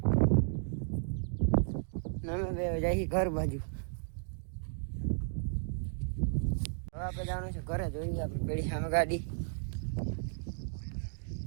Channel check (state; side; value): silent; left; digital silence